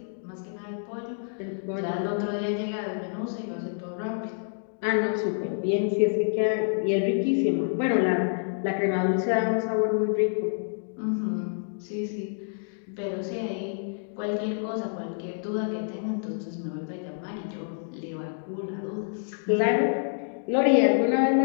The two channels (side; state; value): right; silent; digital silence